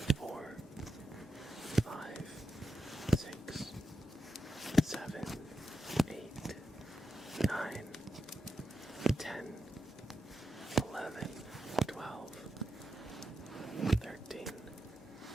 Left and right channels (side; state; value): both; normal; correlation 0.88